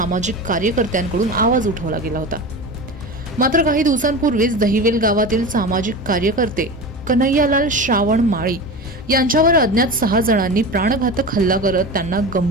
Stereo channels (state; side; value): normal; both; correlation 0.28